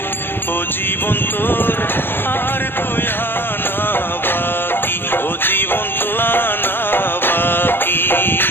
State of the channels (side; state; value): right; late; 0.10 ms